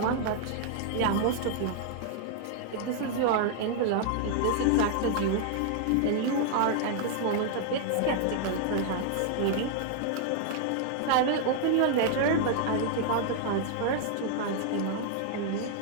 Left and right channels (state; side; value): different; both; correlation 0.00